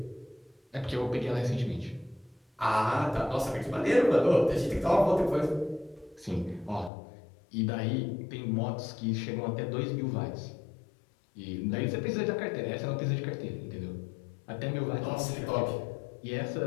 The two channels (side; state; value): right; drops out; at 6.9 s